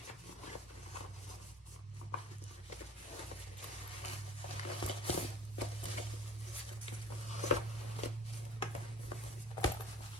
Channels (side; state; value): both; normal; correlation 0.44